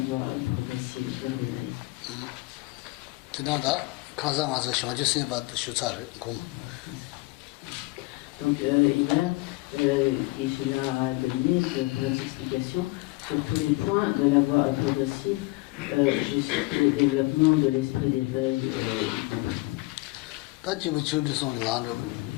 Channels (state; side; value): quieter; right; 22.6 dB